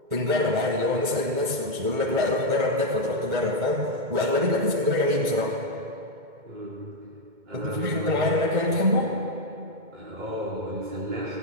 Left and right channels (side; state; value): left; late; 2.2 ms